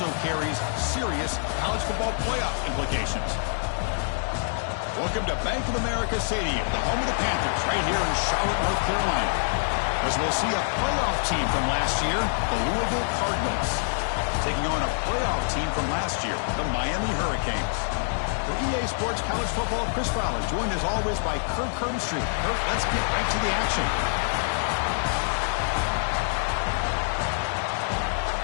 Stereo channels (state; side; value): silent; right; 61 dB below the other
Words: carries serious college football playoff implications. Welcome to Bank of America Stadium, the home of the Panthers, right here in Charlotte, North Carolina. As we'll see a playoff team from last year, the Louisville Cardinals, taking on a playoff team from last year, the Miami Hurricanes. For EA Sports College Football, Chris Fowler, joined as always by Kirk Herbstreit. Kirk, let's get right to the action.